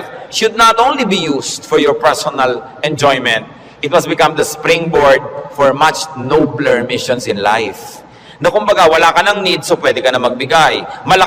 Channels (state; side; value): identical; both; correlation 1.00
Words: should not only be used for your personal enjoyment. It must become the springboard for much nobler missions in life. Na kumbaga, wala ka ng need, so pwede ka na magbigay.